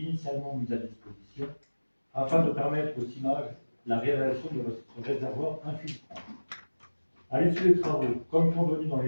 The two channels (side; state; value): both; inverted; correlation -1.00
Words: mis à disposition, afin de permettre au CIMAGE la réalisation de ce réservoir infiltrant. À l'issue des travaux, comme convenu dans